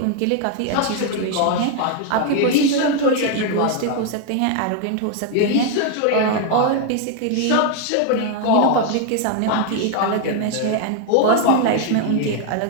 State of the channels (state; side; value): different; both; correlation 0.00